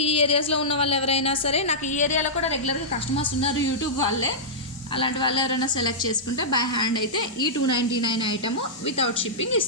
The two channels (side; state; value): both; normal; correlation -0.13